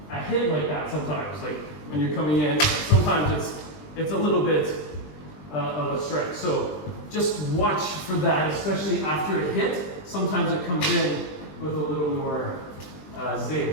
hit like that sometimes. Like when you're coming in, sometimes it's a little bit of a strike. So just watch for that, especially after a hit. Sometimes it comes in with a little more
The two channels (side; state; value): right; late; 20 ms